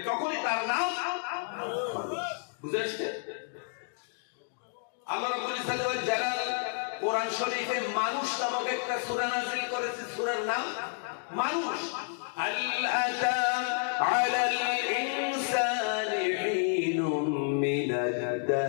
তখনই তার নাম মানুষ। বুঝে আসছে? আল্লাহ রাব্বুল ইজ্জত ওয়াল জালাল কোরআন শরীফে মানুষ নামক একটা সূরা নাযিল করেছে, সূরার নাম মানুষ। আল আতা আলাল ইনসানি হিনুম মিনাদ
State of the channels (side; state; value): right; silent; 57 dB below the other